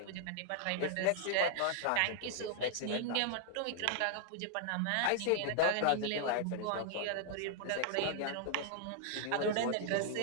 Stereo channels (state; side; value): different; both; correlation -0.01